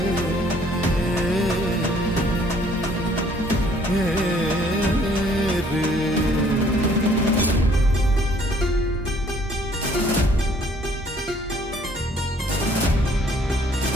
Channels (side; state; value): both; normal; correlation 0.60